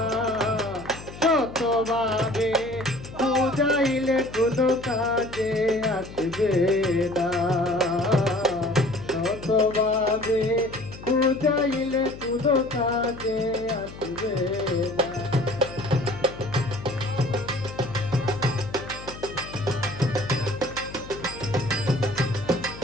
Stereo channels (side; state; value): left; noise; hum, 15 dB below the sound